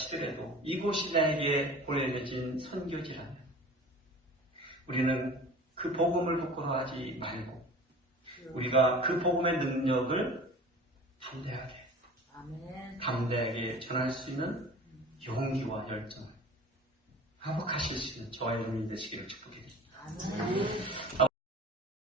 이곳이 나에게 보내진 선교지라면 우리는 그 복음을 부끄러워하지 말고 우리가 그 복음의 능력을 담대하게 전할 수 있는 용기와 열정을 회복하실 수 있는 저와 여러분이 되시기를 축복드립니다.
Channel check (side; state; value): both; normal; correlation 0.41